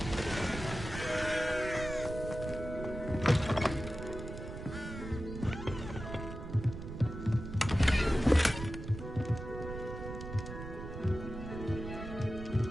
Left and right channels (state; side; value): noise; right; rumble, 9 dB below the sound